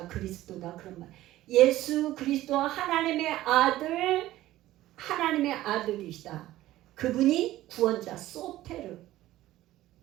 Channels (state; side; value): quieter; left; 15.3 dB